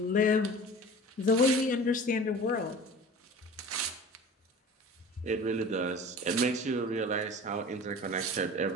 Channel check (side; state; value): both; normal; correlation 0.40